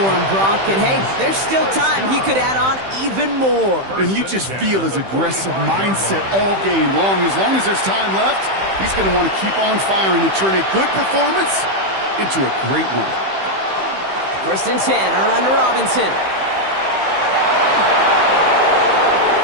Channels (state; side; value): late; left; 15 ms